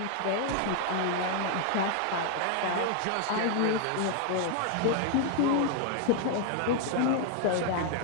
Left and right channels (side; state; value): both; different; correlation 0.00